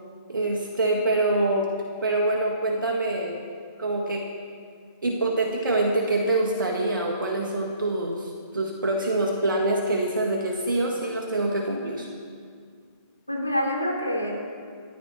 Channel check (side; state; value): both; inverted; correlation -0.58